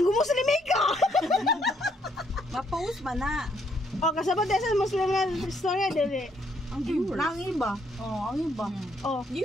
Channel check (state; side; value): normal; both; correlation 0.71